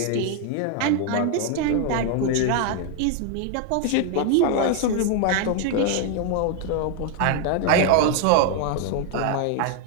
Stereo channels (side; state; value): both; different; correlation 0.00